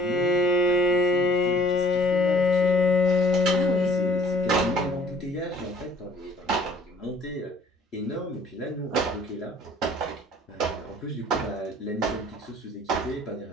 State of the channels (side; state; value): both; normal; correlation 0.55